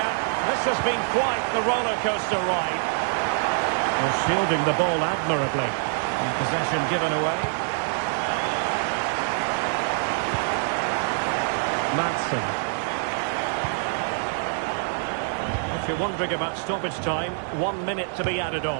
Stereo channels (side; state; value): left; silent; 60 dB below the other